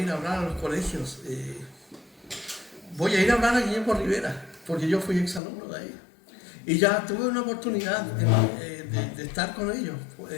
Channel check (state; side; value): drops out; right; at 5.4 s